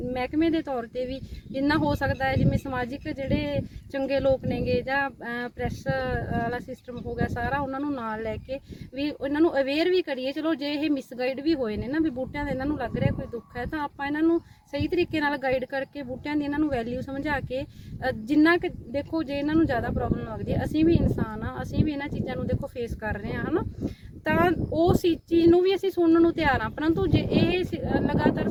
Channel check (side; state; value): both; identical; correlation 1.00